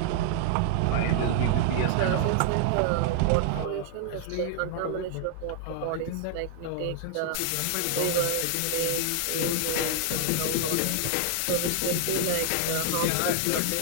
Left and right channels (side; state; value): both; different; correlation 0.00